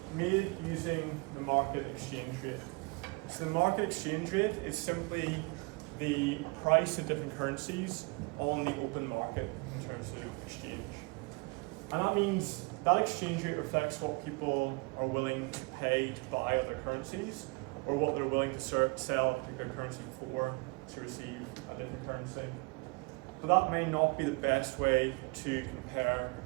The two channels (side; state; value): left; quieter; 27.8 dB